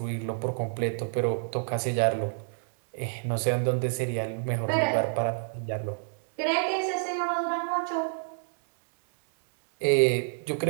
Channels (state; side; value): silent; left; digital silence